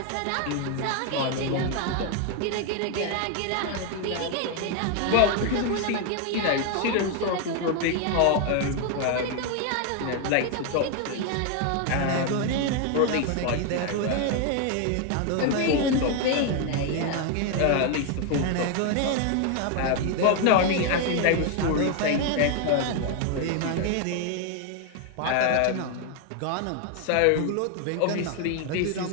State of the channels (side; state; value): both; different; correlation 0.01